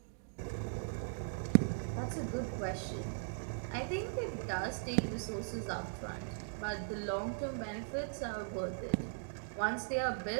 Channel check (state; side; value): silent; left; digital silence